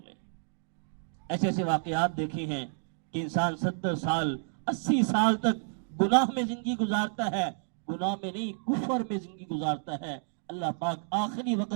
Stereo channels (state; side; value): silent; left; digital silence